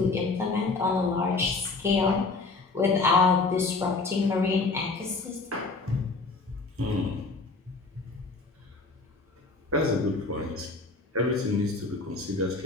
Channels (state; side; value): quieter; right; 3.7 dB